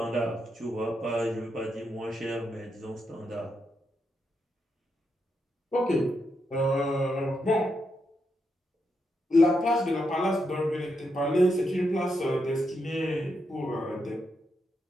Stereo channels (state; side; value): normal; both; correlation 0.82